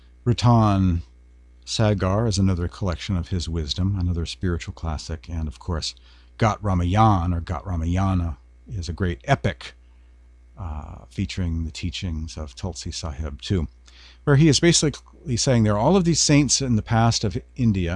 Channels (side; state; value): both; identical; correlation 1.00